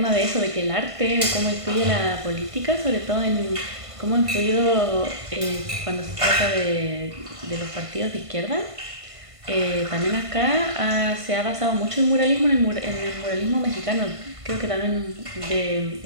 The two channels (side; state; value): left; late; 1.5 ms